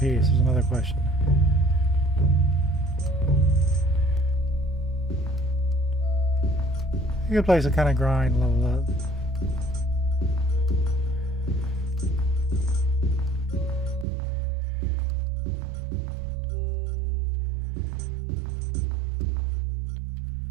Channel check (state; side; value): drops out; left; at 14.1 s